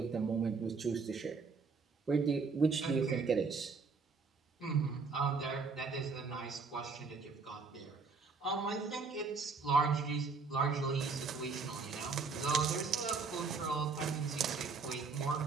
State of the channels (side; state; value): left; quieter; 4.7 dB